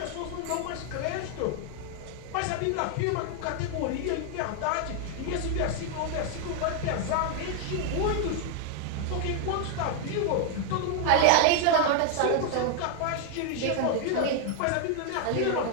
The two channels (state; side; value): different; both; correlation 0.00